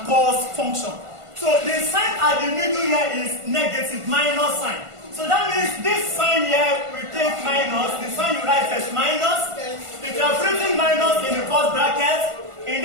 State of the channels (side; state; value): left; late; 1.5 ms